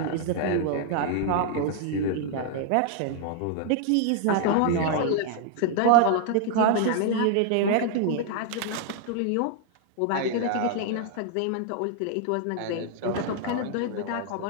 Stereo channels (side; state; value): both; different; correlation 0.00